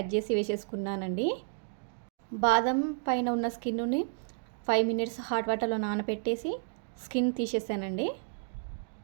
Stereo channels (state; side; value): silent; left; digital silence